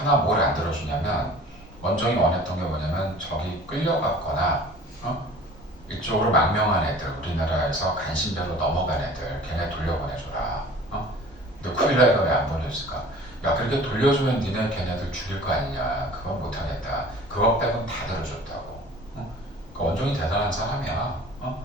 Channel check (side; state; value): both; normal; correlation 0.45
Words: 뭘 안 들어주냐면 원종이 원했던 게 뭐냐면 저기 끌려갔거나 이쪽으로 망명한 애들 우리나라에서 간신배로 넘어간 애들 걔네 돌려보내줘라 근데 쿠빌라이가 왜 안 보내줬을까 야 그렇게 돌려주면 니네 걔네들 죽일 거 아니냐 그건 못하겠다 그거 빼곤 다 들어줬다고 그러니까 원종이 대단한 사람이야